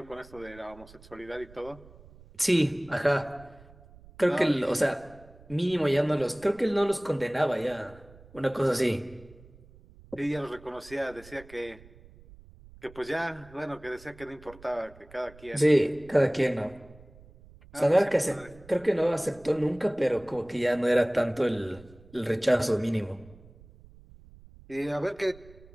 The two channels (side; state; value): right; noise; rumble, 23 dB below the sound